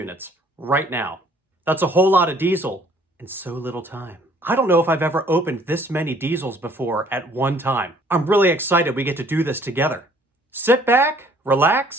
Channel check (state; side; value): normal; both; correlation 0.59